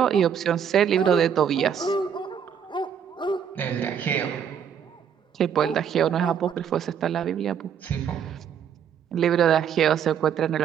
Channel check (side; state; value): left; quieter; 8.2 dB